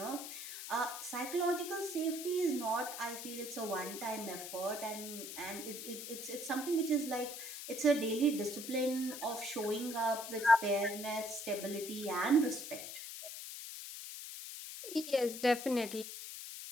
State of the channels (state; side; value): noise; left; hiss, 8 dB below the sound